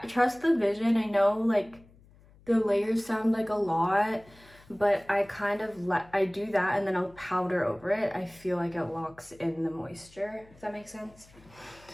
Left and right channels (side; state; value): left; noise; hum, 26 dB below the sound